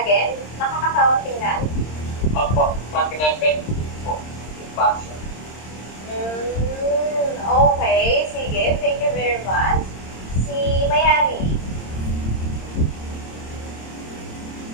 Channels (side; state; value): right; late; 26 ms